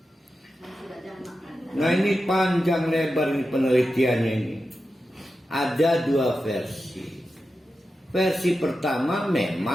Nah ini panjang lebar ini penelitiannya ini. Ada 2 versi. Versi pertama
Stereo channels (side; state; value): both; normal; correlation 0.91